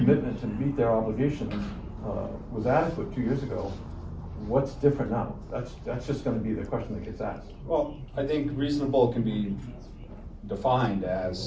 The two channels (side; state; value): both; identical; correlation 1.00